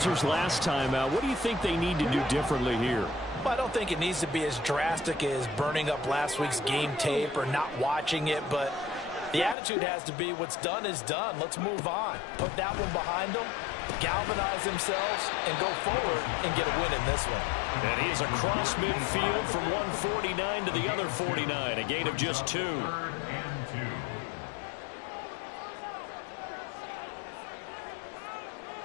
last time out. What do you think they need to do differently here? Well, I don't think it needs to be as drastic as burning up last week's game tape or not watching it, but the attitude has to be what's done is done. Let's move on. Put that one behind them, galvanize themselves, and go forward and get a win in this one. And he is across midfield from 149 to the other 49, a gain of just 2. 3rd and 2.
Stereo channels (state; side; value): drops out; right; at 9.6 s